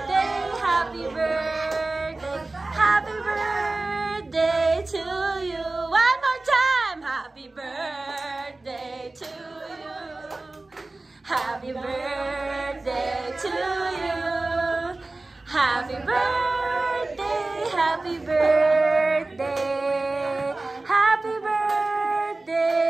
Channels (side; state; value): left; quieter; 3.1 dB